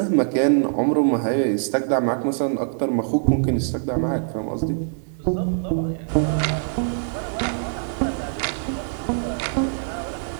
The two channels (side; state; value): left; silent; 63 dB below the other